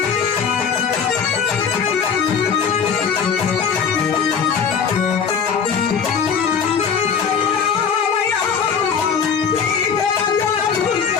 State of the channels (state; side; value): quieter; right; 6.5 dB